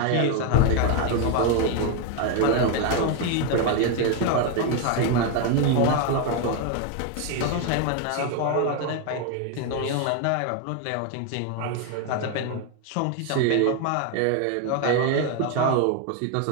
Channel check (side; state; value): both; different; correlation 0.01